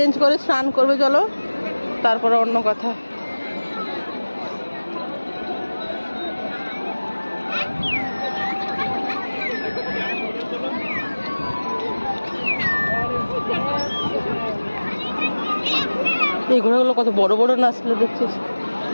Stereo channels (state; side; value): inverted; both; correlation -1.00